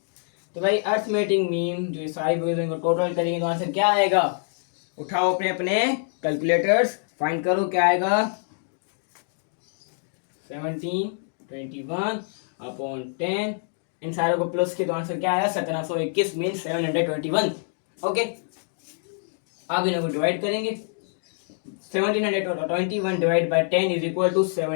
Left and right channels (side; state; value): right; silent; digital silence